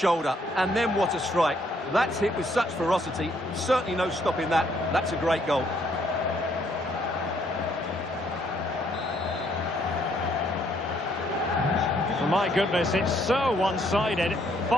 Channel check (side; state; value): both; normal; correlation 0.68